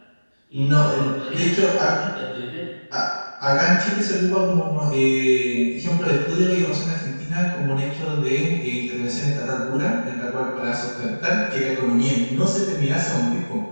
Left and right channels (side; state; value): both; inverted; correlation -1.00